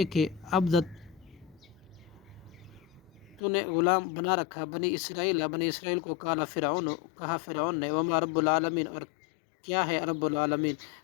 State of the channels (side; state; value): right; drops out; at 3.4 s